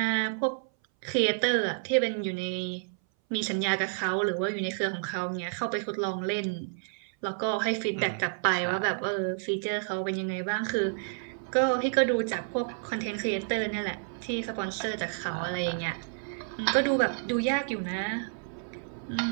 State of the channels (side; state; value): left; silent; 58 dB below the other